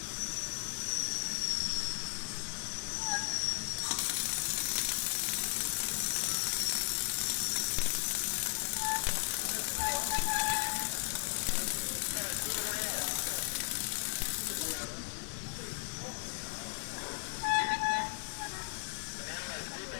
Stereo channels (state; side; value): silent; right; digital silence